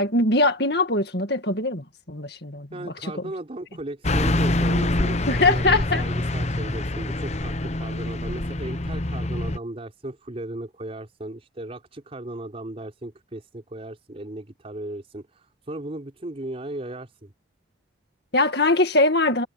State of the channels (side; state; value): both; normal; correlation 0.21